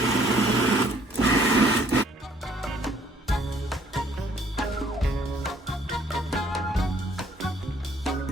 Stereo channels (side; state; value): both; normal; correlation 0.62